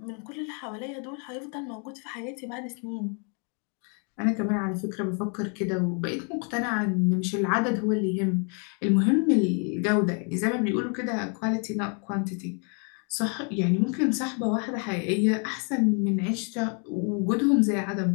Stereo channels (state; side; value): quieter; right; 38.3 dB